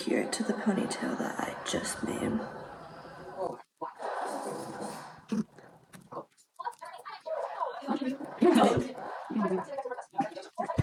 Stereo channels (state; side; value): identical; both; correlation 1.00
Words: it to the ponytail that I just made.